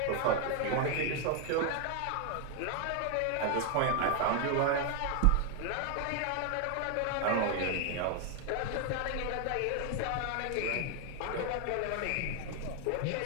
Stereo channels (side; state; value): both; different; correlation 0.01